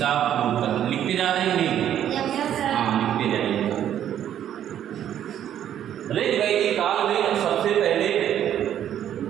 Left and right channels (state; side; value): quieter; left; 10.5 dB